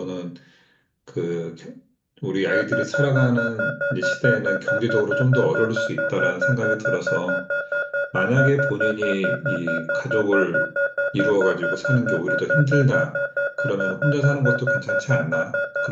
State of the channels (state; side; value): identical; both; correlation 1.00